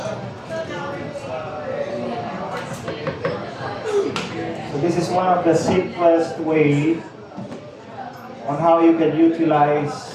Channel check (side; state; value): both; identical; correlation 1.00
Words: this is one of the simplest way on how you can